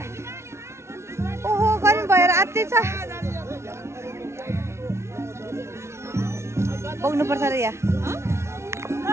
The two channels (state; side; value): late; left; 0.13 ms